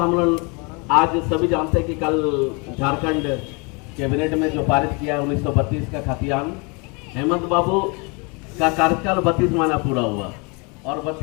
हम लोग आज सभी जानते हैं कि कल झारखंड कैबिनेट में जो पारित किया 1932 का खतियान, हेमंत बाबू का कार्यकाल 32 महीना पूरा हुआ, और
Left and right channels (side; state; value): right; quieter; 31.0 dB